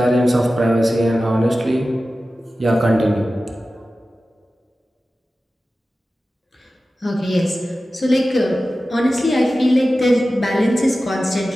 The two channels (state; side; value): normal; both; correlation 0.95